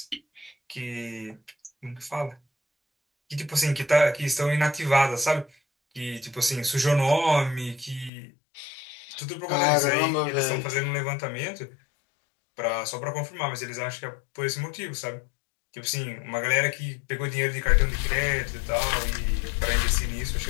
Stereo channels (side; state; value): right; drops out; at 8.1 s